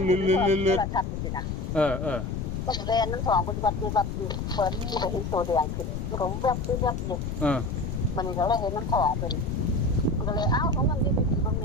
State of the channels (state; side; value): noise; left; rumble, 4 dB below the sound